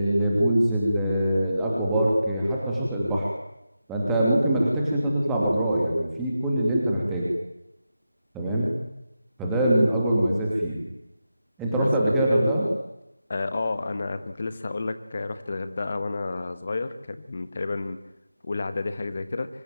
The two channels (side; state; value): both; inverted; correlation -0.87